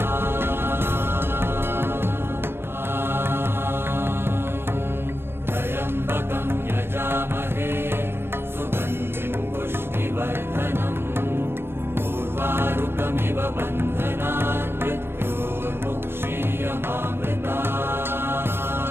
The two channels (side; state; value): left; late; 0.11 ms